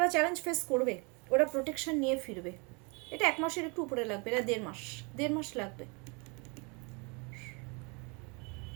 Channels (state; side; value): quieter; left; 31.7 dB